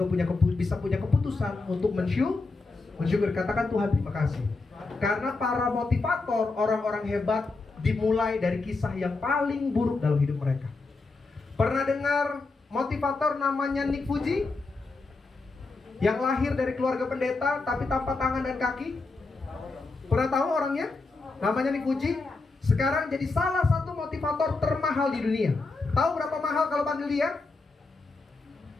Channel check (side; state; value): right; quieter; 3.7 dB